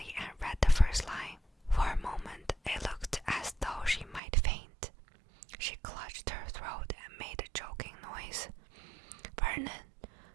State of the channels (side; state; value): left; drops out; at 4.2 s